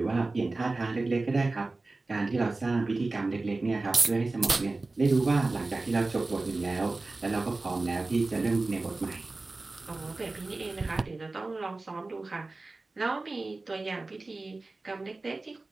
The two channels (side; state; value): left; quieter; 3.3 dB